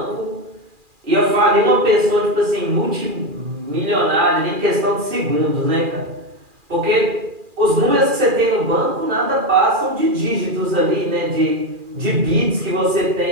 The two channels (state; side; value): late; left; 2.4 ms